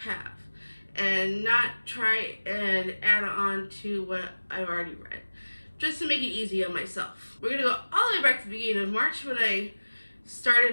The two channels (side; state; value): both; inverted; correlation -1.00